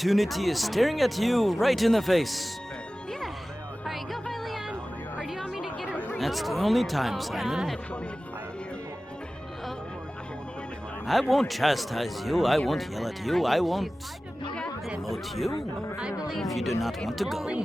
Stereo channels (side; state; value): both; normal; correlation 0.97